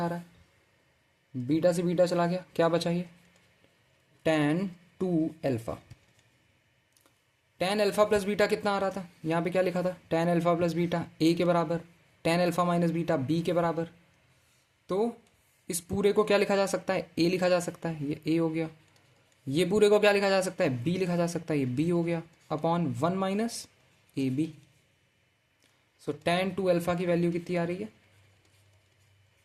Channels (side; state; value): both; identical; correlation 1.00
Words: आ रहा है। बीटा से बीटा चला गया, क्या बचा ये? tan 2 alpha. tan alpha plus beta कितना आ रहा था? यहाँ पे क्या लिखा था? tan alpha plus beta a के बराबर, tan alpha minus beta b के बराबर। तो इस पूरे को क्या लिखा जा सकता है? a लिखा जा सकता है, ये a हो गया। ये पूरे को क्या लिखा जा सकता है? b लिखा जा सकता है, ये b हो गया, upon 1 minus a b. So tan 2 alpha की वैल्यू कितनी आ रही है?